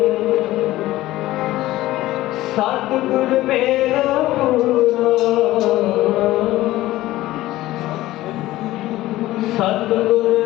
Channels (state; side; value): quieter; right; 16.4 dB